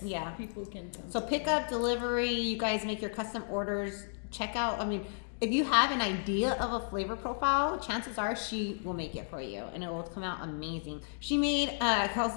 Yeah. people can come. So pick up, delivery, you guys make your custom orders. Check out, I mean, if you have an idea of a flavor profile, chances are she will make it for you and it will come out amazing. She made, I was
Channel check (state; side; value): silent; right; digital silence